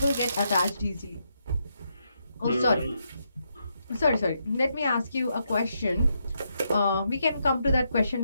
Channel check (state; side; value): inverted; both; correlation -0.80